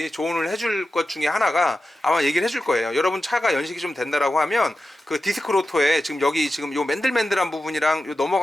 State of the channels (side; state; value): both; normal; correlation 0.92